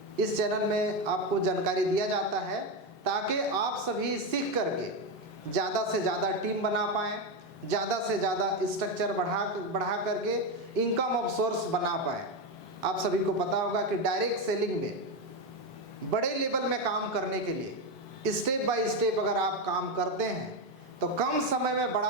इस चैनल में आपको जानकारी दिया जाता है, ताकि आप सभी सीख करके ज़्यादा से ज़्यादा टीम बना पाएँ, ज़्यादा से ज़्यादा स्ट्रक्चर बढ़ा करके इनकम ऑफ सोर्स बना पाएँ। आप सभी को पता होगा कि डायरेक्ट सेलिंग में बड़े लेवल में काम करने के लिए स्टेप बाय स्टेप अगर आप काम करते हैं तो कम समय में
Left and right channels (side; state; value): both; normal; correlation 0.11